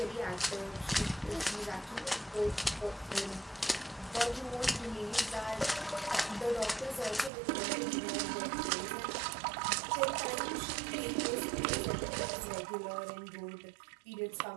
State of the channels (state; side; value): drops out; left; at 7.3 s